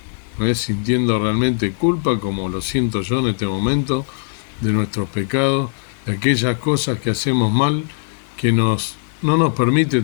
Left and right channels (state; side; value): silent; right; digital silence